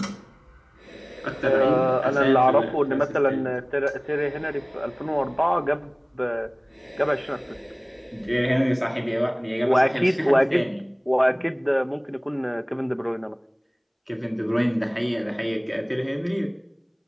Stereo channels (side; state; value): both; identical; correlation 1.00